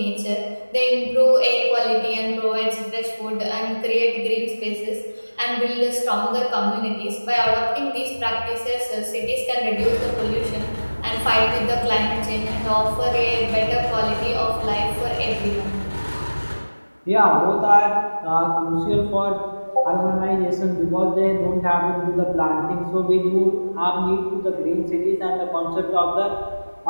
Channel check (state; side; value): inverted; both; correlation -1.00